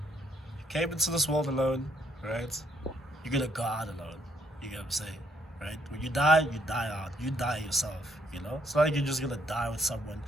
you came into this world alone, right? You're going to go out alone. You get what I'm saying? Right? When you die out. You die yourself, It's not like you're just going to die with someone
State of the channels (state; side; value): normal; both; correlation 0.71